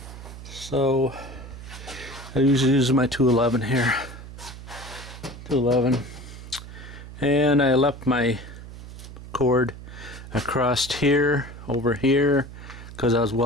I usually use my 211 here. 211. And I left my cord across here, over here, because I was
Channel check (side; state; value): right; noise; hum, 14 dB below the sound